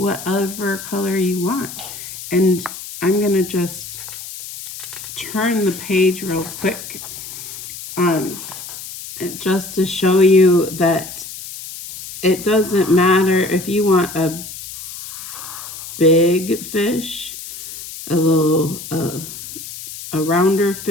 color you want. And I'm gonna just turn the page real quick just to show you that it doesn't matter if you want a big fish, a little a rounder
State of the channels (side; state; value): left; noise; hiss, 12 dB below the sound